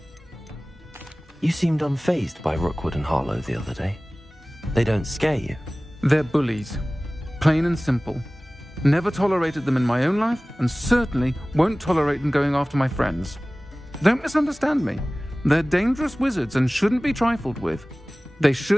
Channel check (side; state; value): both; normal; correlation 0.98